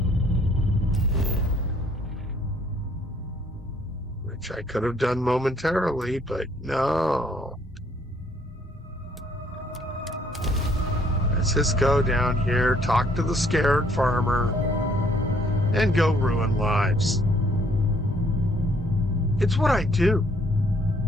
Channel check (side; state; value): both; normal; correlation 0.64